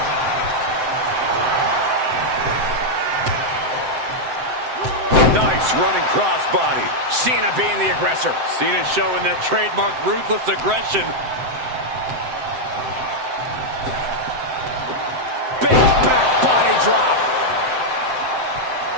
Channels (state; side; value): late; left; 7.8 ms